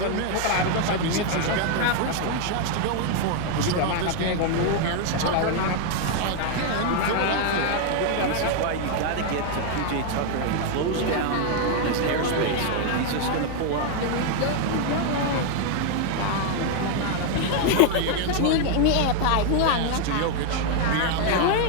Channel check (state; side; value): different; both; correlation 0.00